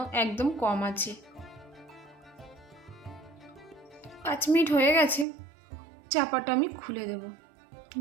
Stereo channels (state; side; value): drops out; left; at 5.2 s